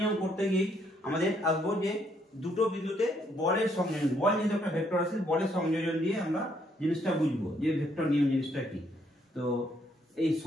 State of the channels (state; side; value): normal; both; correlation 0.71